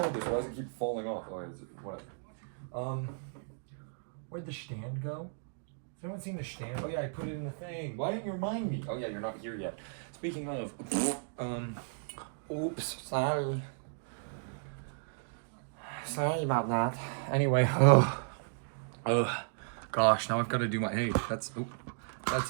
this? Why does it keep falling off? Oh, is it, whatever. Where'd the stand go? Has anyone seen the stand? Oh yeah, I put it in the thing. Why didn't you remind me? Oh yeah, you're not here yet. Speaking of, oops, sorry. Sorry about that. Anyway, gosh, now I've got to do my, hey, that's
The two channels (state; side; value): silent; left; digital silence